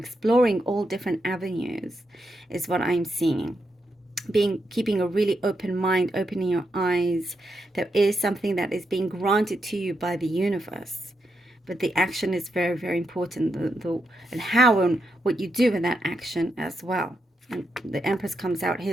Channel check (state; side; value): normal; both; correlation 0.83